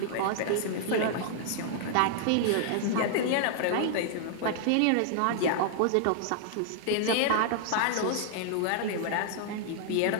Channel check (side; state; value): both; different; correlation -0.01